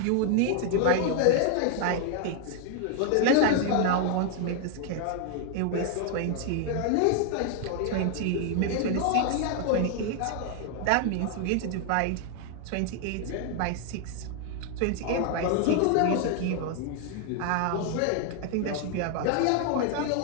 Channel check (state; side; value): different; both; correlation 0.00